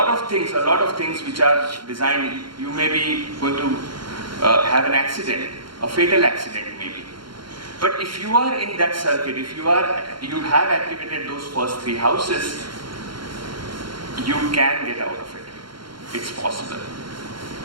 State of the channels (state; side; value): late; left; 0.73 ms